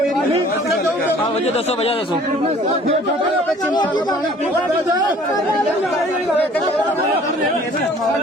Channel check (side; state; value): both; normal; correlation 0.52